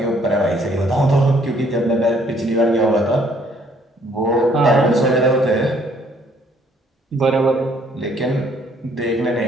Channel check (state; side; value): normal; both; correlation 0.64